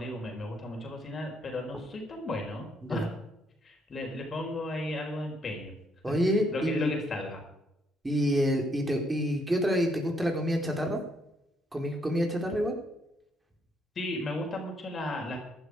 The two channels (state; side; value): normal; both; correlation 0.72